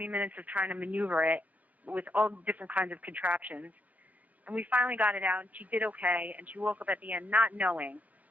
minutes of trying to maneuver it with all different kinds of contraptions. And we finally got it out, and she did okay, and she woke up at the end not knowing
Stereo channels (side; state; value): left; late; 0.077 ms